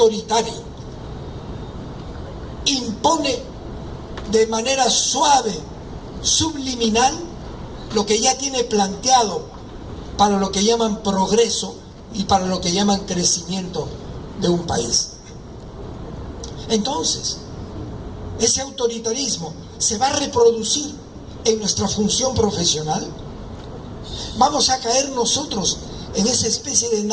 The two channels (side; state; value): both; identical; correlation 1.00